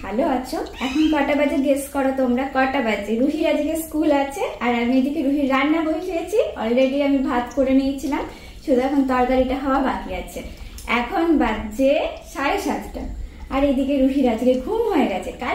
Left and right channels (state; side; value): identical; both; correlation 1.00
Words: আছো। এখন কটা বাজে গেস করো তোমরা? কটা বাজে? রুহির আজকে স্কুল আছে আর আমি এদিকে রুহির রান্না বসিয়েছি। অলরেডি আমি ভাত করে নিয়েছিলাম, শুধু এখন তরকারিটা হওয়া বাকি আছে। এখন বাজে 7:30 আর এদিকে রুহির আজকে ঘুম হয়ে গেছে। কাল